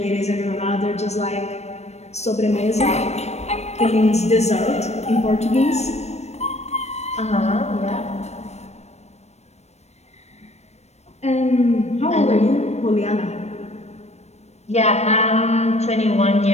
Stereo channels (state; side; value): late; right; 0.32 ms